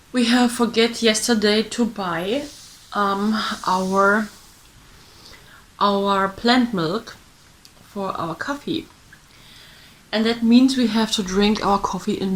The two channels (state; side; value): identical; both; correlation 1.00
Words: have forget yesterday to buy our plant milk for our coffee, and that means we have to drink our coffee in